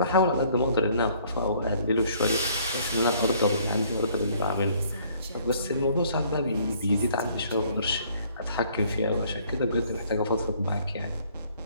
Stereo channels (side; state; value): both; inverted; correlation -0.60